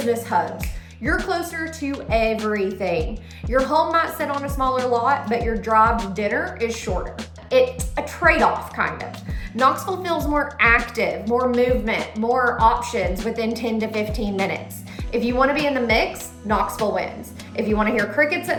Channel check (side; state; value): both; identical; correlation 1.00